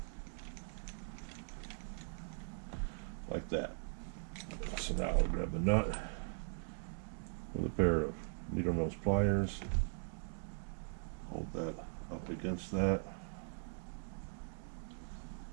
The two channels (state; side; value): silent; left; digital silence